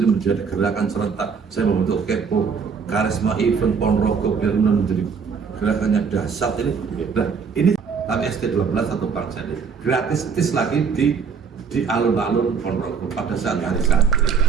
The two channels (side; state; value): left; quieter; 5.9 dB